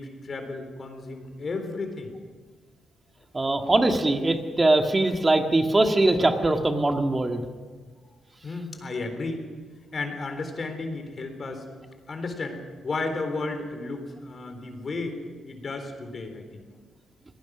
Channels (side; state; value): both; normal; correlation 0.93